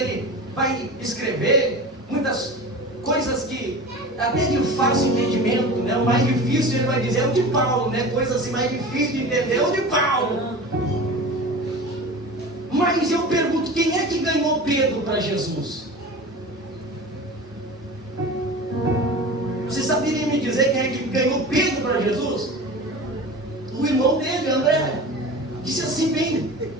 vai escrever, muitas coisas que até de fácil entendimento, né? O mais difícil ele vai dizer é o de Paulo, né? Coisas assim mais difíceis de entender é o de Paulo. Mas eu pergunto, quem é que ganhou Pedro para Jesus? Você saberia me dizer quem é que ganhou Pedro para Jesus? O irmão dele, André. Disse assim, vem,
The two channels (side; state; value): both; normal; correlation 0.34